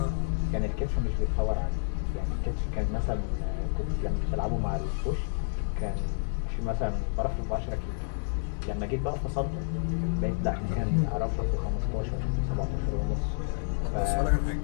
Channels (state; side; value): silent; right; digital silence